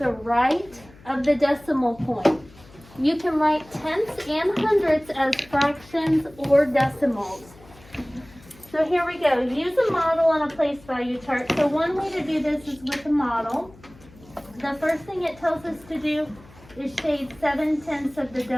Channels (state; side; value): noise; left; hum, 24 dB below the sound